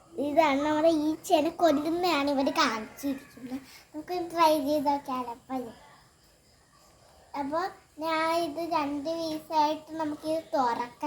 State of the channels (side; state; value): both; identical; correlation 1.00